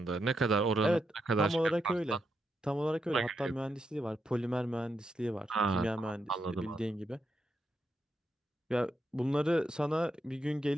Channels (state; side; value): normal; both; correlation 0.83